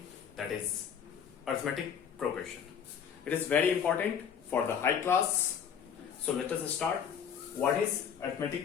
that is arithmetic progression. It is very important for the high class. So let us start. What is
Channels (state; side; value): quieter; right; 7.8 dB